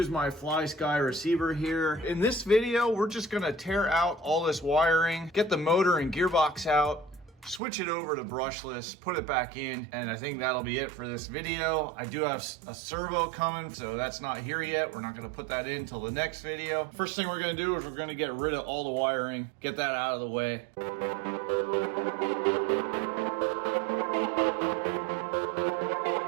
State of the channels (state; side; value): drops out; left; at 7.6 s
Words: my Fly Sky receiver here. In this video, we're just gonna tear out all this wiring, get the motor and gearbox out, switch it over to brushless, put it back in, and I think that'll be it for this video. I do have a servo coming, so that's not here yet. We're not gonna put that in till the next video. First thing we're gonna do is we're gonna get rid of all the wiring, get that out of the way.